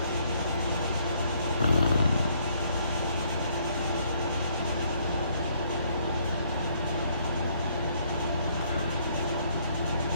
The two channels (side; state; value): both; inverted; correlation -0.67